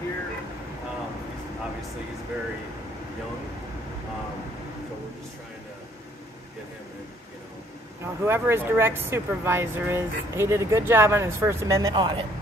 here. Obviously, he's very young. So we're just trying to get him in, you know. Whoever his direct supervisor is, he did a good job on his First Amendment audit.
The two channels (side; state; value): both; normal; correlation 0.63